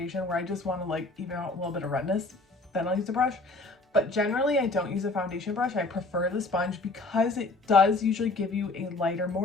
where I just want to like even out a little bit of redness. then I'll use a brush. But generally I don't use a foundation brush. I prefer the sponge because it does usually give you a lighter,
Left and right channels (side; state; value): right; quieter; 3.2 dB